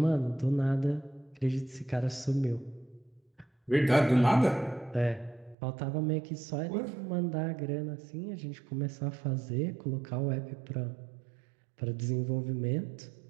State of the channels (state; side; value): drops out; left; at 5.6 s